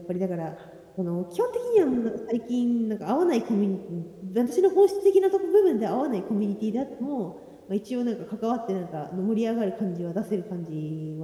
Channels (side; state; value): both; identical; correlation 1.00